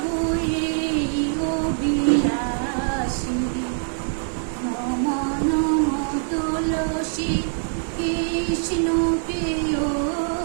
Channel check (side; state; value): left; silent; digital silence